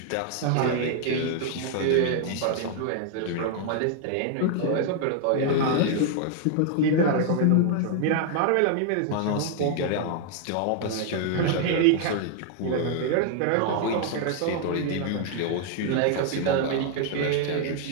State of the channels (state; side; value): different; both; correlation 0.00